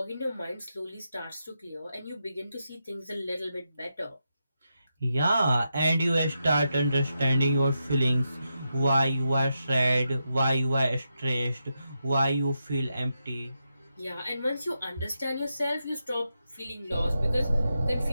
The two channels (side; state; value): both; inverted; correlation -0.86